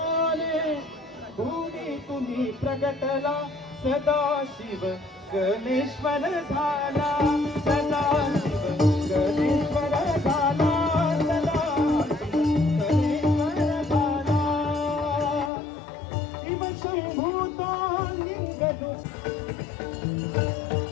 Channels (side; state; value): right; drops out; at 15.5 s